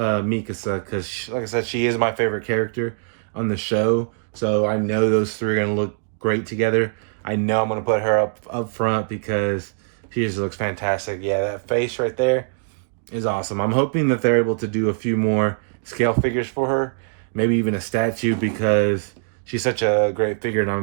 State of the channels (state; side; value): silent; left; digital silence